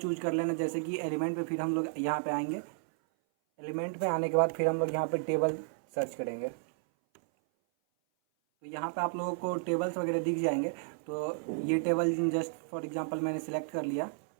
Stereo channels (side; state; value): left; silent; 56 dB below the other